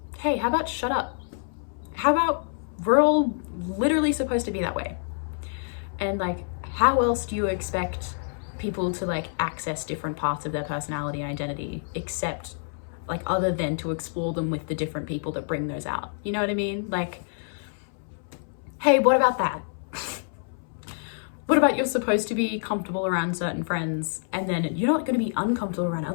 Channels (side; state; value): right; silent; 60 dB below the other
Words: shut up? How about we're all literally supposed to be that way? And like, how else do you expect people to like access different parts of their personality and identity, except like other than to explore them with the different people that bring those out? You know what I mean? Like, hey, what about that? What about you're supposed to be comfortable around certain friends, and then you're not going to be uncomfortable around